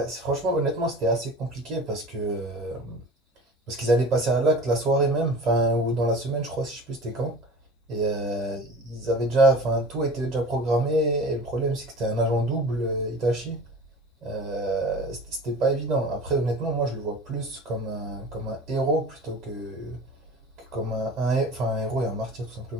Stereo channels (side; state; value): both; normal; correlation 0.38